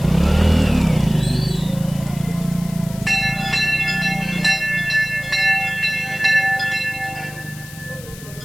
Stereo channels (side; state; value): left; noise; hiss, 17 dB below the sound